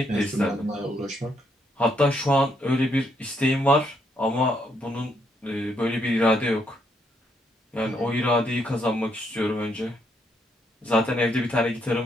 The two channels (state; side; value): normal; both; correlation 0.74